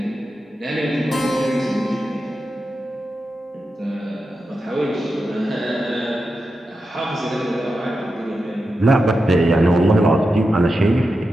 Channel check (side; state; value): both; normal; correlation 0.89